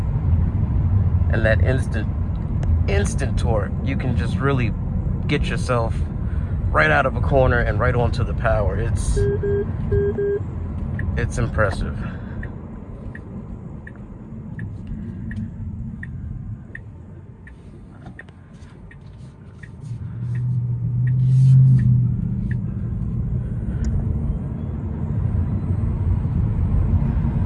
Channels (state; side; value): identical; both; correlation 1.00